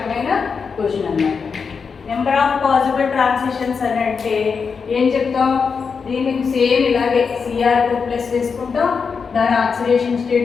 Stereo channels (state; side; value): quieter; right; 5.6 dB